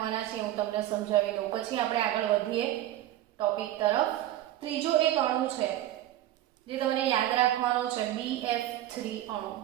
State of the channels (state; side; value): quieter; left; 13.7 dB